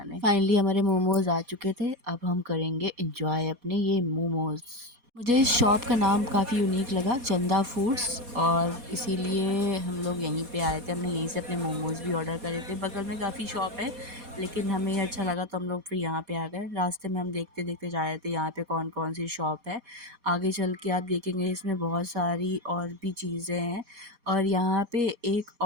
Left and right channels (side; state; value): left; late; 4.2 ms